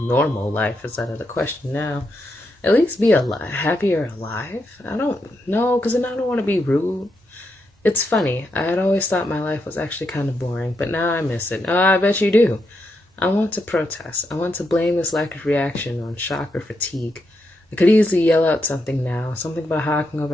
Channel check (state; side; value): normal; both; correlation 0.82